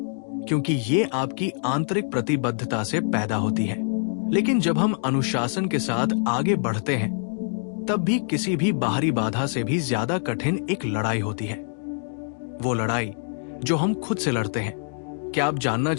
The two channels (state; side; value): silent; right; digital silence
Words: क्योंकि ये आपकी आंतरिक प्रतिबद्धता से पैदा होती है। लेकिन जब हम अनुशासन के साथ आगे बढ़ते हैं, तब भी किसी भी बाहरी बाधा से भी ज्यादा कठिन एक लड़ाई होती है। वो लड़ाई जो हम खुद से लड़ते हैं। क्या आप जानना